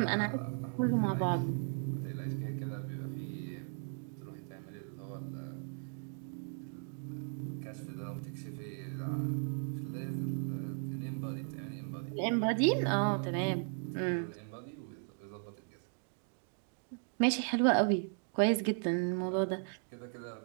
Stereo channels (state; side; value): silent; left; 53 dB below the other